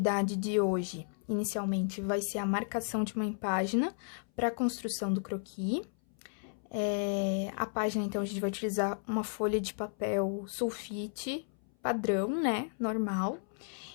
de hoje, inicialmente, vai ser a marcação de uma página para a construção do croquis. A página, então, a gente vai utilizar uma folha de papel sulfite padrão, né, normal.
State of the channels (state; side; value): silent; right; 55 dB below the other